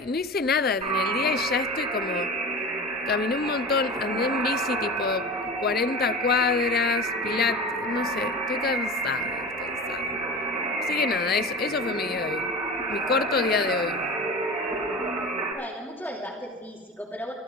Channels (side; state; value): both; normal; correlation 0.32